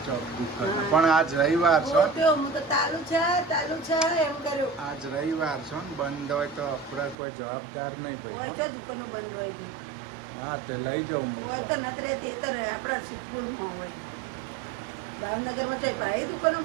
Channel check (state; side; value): drops out; left; at 7.2 s